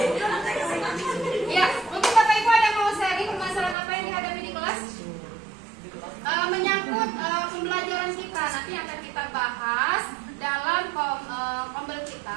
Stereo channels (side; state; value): left; drops out; at 3.8 s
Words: Ya, mungkin Bapak Ibu ada yang mau sharing permasalahan apa yang dihadapi di kelas? Menyangkut pembelajaran kita nanti akan kita bahas dalam kombel